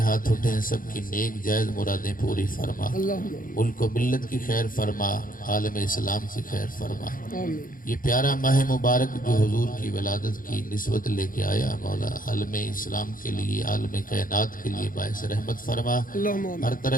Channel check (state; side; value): late; right; 0.40 ms